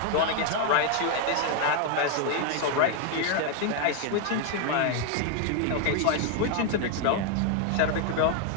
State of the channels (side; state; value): both; different; correlation 0.00